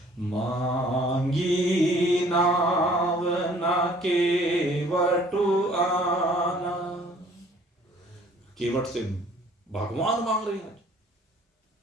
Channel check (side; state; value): both; normal; correlation 0.56